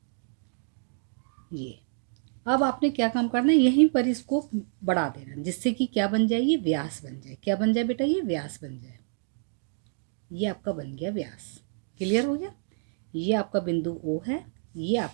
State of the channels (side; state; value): left; silent; digital silence